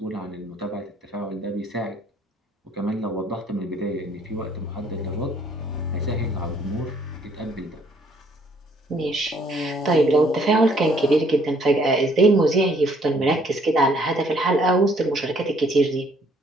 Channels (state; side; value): normal; both; correlation 0.63